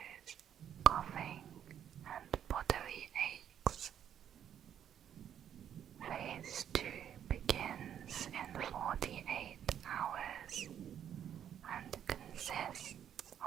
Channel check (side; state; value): left; quieter; 9.5 dB